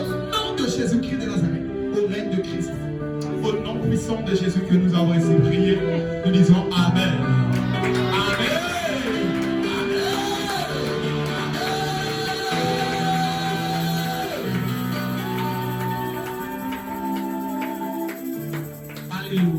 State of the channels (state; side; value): identical; both; correlation 1.00